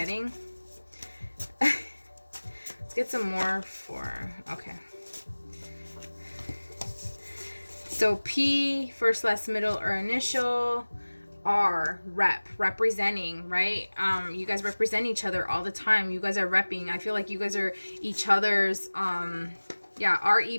Let's get some more for, okay. So P, first, last, middle, or initial. R, representing, right? You guys represent each other all the time. You guys are repping. I feel like you guys are each other's, yeah,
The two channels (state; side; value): inverted; both; correlation -1.00